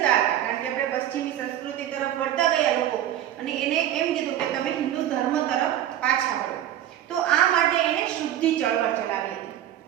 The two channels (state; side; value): quieter; left; 11.7 dB